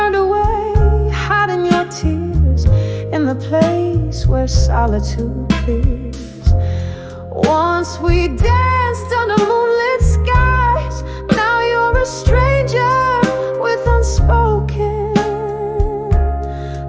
away, hiding your tears in the place where solitude clears. Once we danced under moonlit skies, now you're a stranger with unspoken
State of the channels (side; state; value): both; identical; correlation 1.00